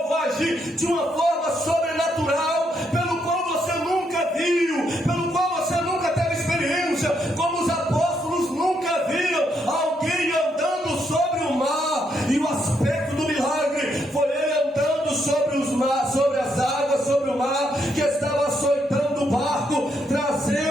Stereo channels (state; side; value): normal; both; correlation 0.77